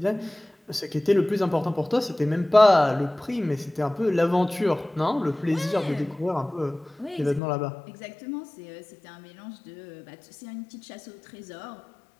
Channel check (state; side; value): drops out; right; at 7.4 s